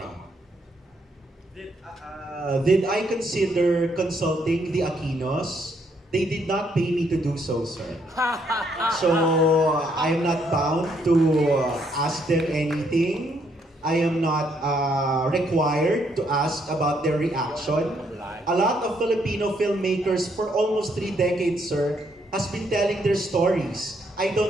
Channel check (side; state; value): both; normal; correlation 0.72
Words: Did I consider consulting the Aquinos? They did not pay me to do so, sir. So, I am not bound to ask them anything. I am not required to ask about their reaction. A lot of Filipino filmmakers for almost 3 decades, sir, has been telling their stories. I